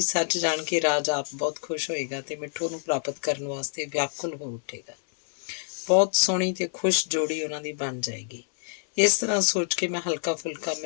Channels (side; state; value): right; silent; digital silence